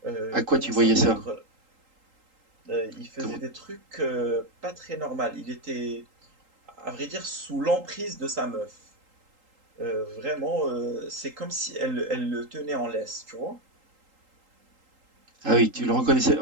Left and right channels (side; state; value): left; late; 3.8 ms